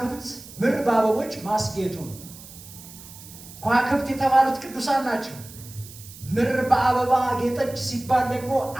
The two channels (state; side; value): noise; right; hiss, 17 dB below the sound